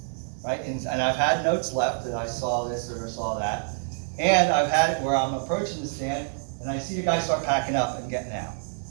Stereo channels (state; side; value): silent; left; 57 dB below the other